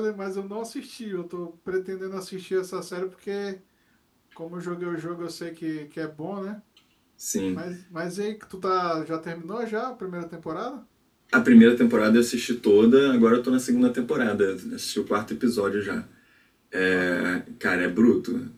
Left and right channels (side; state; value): both; identical; correlation 1.00